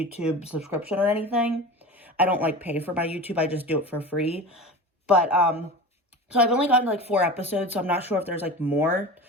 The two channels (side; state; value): both; normal; correlation 0.31